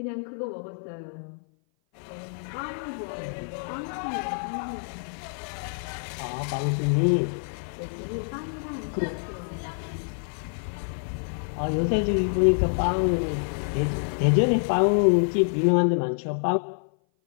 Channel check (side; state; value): right; silent; 57 dB below the other